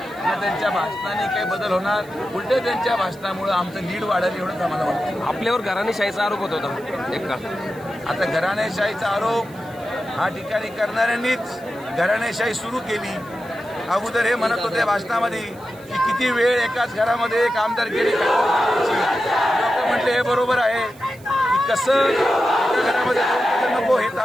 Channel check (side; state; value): right; noise; hiss, 25 dB below the sound